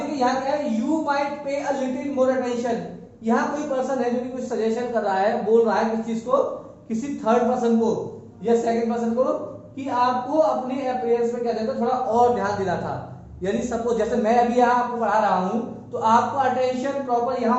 यहां क्या है, you might pay a little more attention. यहां कोई पर्सन है जो कि कुछ सजेशन कर रहा है, बोल रहा है किस चीज को, किसी थर्ड पर्सन को या सेकंड पर्सन को, कि आपको अपने अपीयरेंस में क्या देता थोड़ा और ध्यान देना था। यानी सपोज जैसे मैं अभी यहाँ आपको पढ़ा रहा हूं, तो आपको अटेंशन प्रॉपर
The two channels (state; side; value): identical; both; correlation 1.00